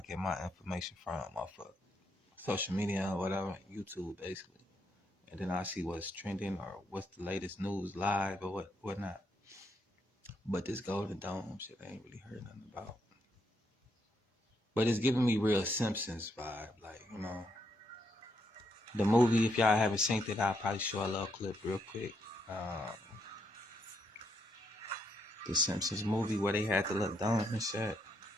my information from, off of social media or whatever, YouTube basically. And then I see what's trending or what's the latest news live or whatnot. But this Golden Dome shit I ain't really heard nothing about. But it's giving me real Simpsons vibe, like, you know. The movie, if y'all haven't seen it, I'll probably show a little clip real quick. The Simpsons movie where they had the little dome and shit.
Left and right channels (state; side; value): normal; both; correlation 0.77